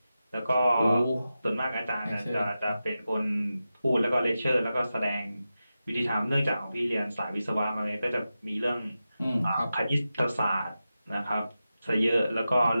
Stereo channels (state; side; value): inverted; both; correlation -0.92